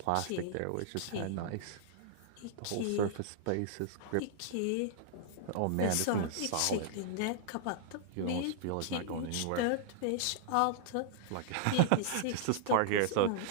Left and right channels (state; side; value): different; both; correlation -0.01